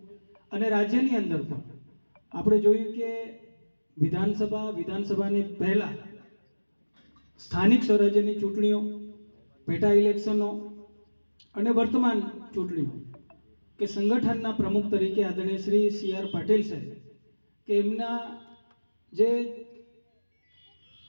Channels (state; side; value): inverted; both; correlation -1.00